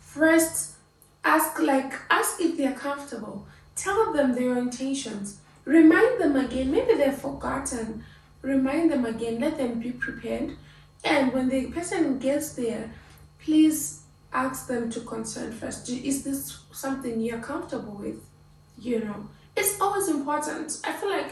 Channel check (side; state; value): both; identical; correlation 1.00